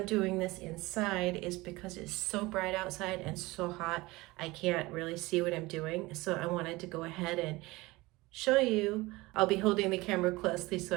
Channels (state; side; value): quieter; left; 21.3 dB